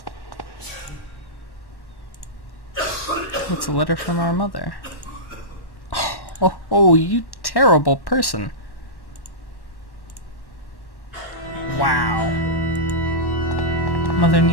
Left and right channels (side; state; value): right; late; 1.1 ms